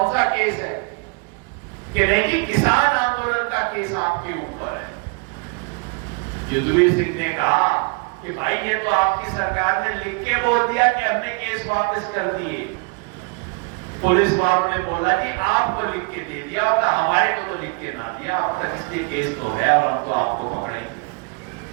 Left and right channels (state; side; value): quieter; left; 31.8 dB